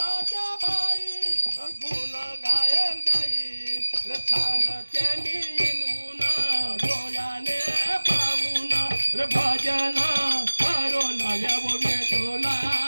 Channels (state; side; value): inverted; both; correlation -1.00